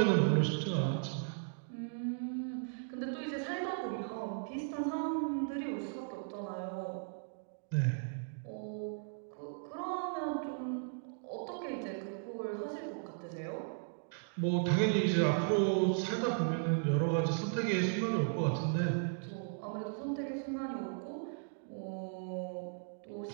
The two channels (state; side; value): silent; left; digital silence